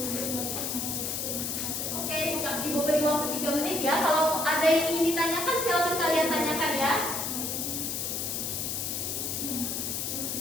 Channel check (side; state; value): left; noise; hiss, 2 dB below the sound